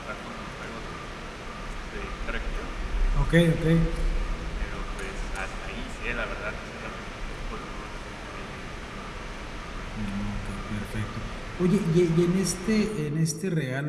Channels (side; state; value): both; identical; correlation 1.00